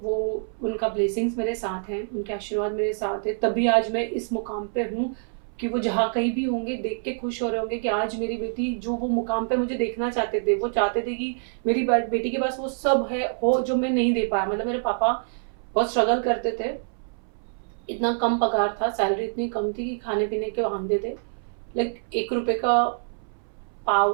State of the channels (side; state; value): left; silent; 61 dB below the other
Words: वो उनका ब्लेसिंग्स मेरे साथ हैं, उनके आशीर्वाद मेरे साथ है, तभी आज मैं इस मुकाम पे हूँ कि वो जहाँ कहीं भी होंगे देख के खुश हो रहे होंगे कि आज मेरी बेटी जो वो मुकाम पे मुझे देखना चाहते थे, वो चाहते थे कि मेरी बेटी के पास वो सब है हो जो मैं नहीं दे पाया। मतलब मेरे पापा बहुत स्ट्रगल करते थे, इतना कम पगार था, सैलरी इतनी कम थी कि खाने पीने के वांदे थे। लाइक 1 रुपए का